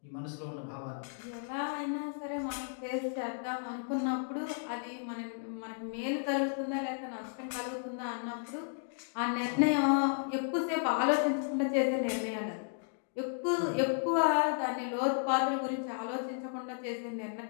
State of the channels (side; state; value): right; silent; digital silence